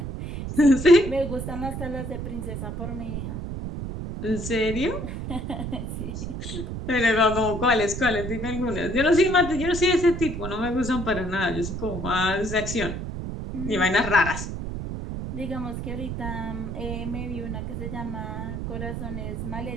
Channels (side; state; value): right; noise; rumble, 5 dB below the sound